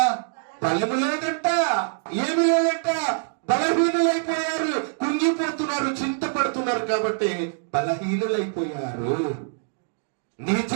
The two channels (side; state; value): left; silent; digital silence